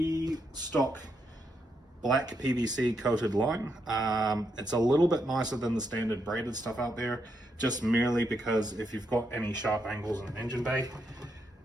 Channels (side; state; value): both; normal; correlation 0.80